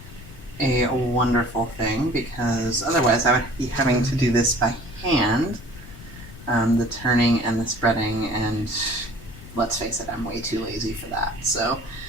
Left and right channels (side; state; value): left; noise; rumble, 17 dB below the sound